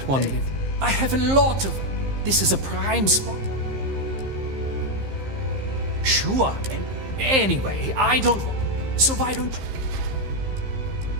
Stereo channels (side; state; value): left; late; 15 ms